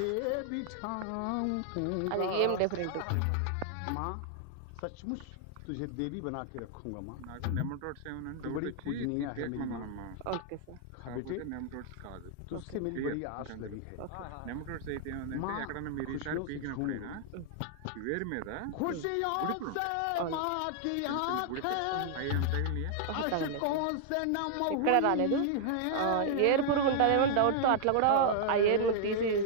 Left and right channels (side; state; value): both; different; correlation -0.01